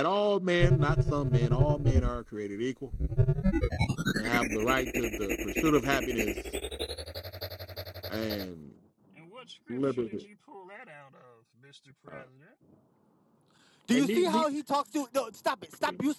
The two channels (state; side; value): identical; both; correlation 1.00